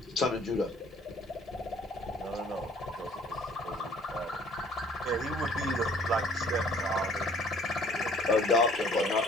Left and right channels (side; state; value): both; normal; correlation 0.56